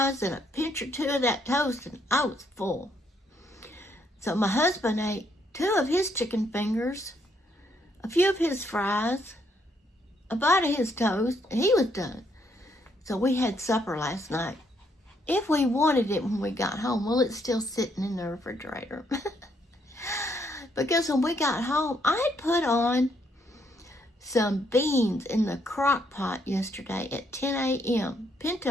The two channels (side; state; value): both; normal; correlation 0.72